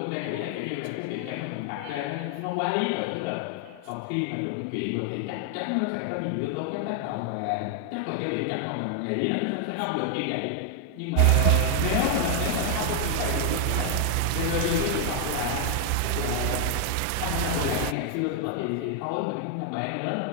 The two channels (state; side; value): different; both; correlation 0.00